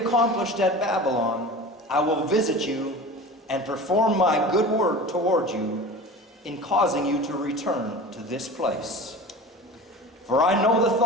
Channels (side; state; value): both; normal; correlation 0.35